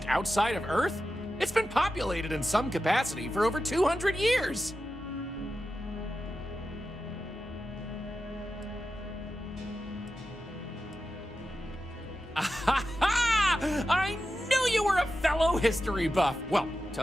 outside of Earth? It's been populated in some capacity for over 200 years. I knew you were a fellow history buff. Well,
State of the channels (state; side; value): normal; both; correlation 0.92